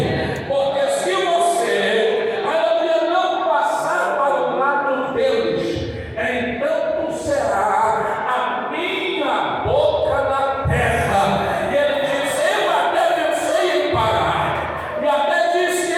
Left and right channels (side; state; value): both; identical; correlation 1.00